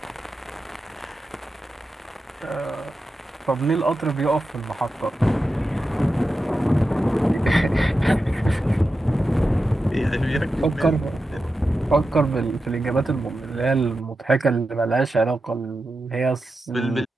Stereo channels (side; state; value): both; normal; correlation 0.91